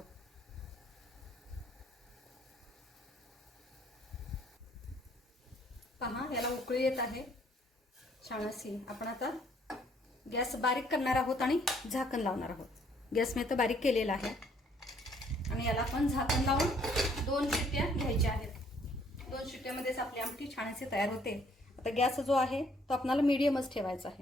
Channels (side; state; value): both; normal; correlation 0.64